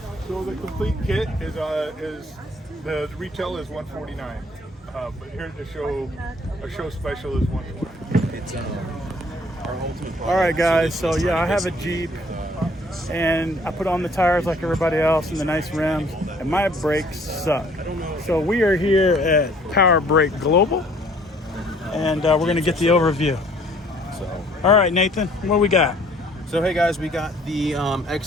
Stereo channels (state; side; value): normal; both; correlation 0.58